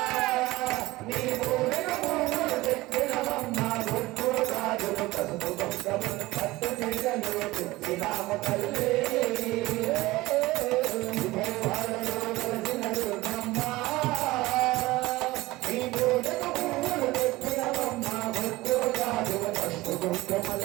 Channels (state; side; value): quieter; left; 19.4 dB